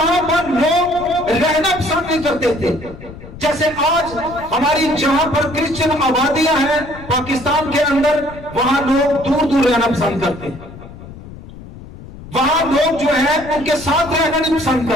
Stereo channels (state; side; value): noise; left; rumble, 16 dB below the sound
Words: पर लोग रहना पसंद नहीं करते थे। जैसे आज हमारी जहां पर क्रिश्चियन आबादियां हैं पाकिस्तान के अंदर, वहां लोग दूर दूर रहना पसंद करते हैं, वहां लोग जो है उनके साथ रहना नहीं पसंद